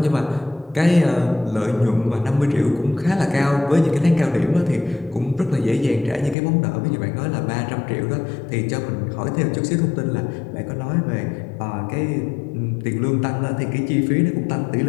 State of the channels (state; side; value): drops out; right; at 6.4 s